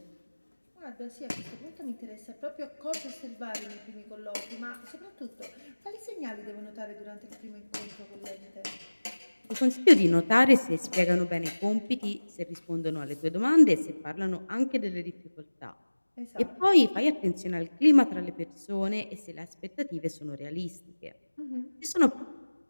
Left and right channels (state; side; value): inverted; both; correlation -1.00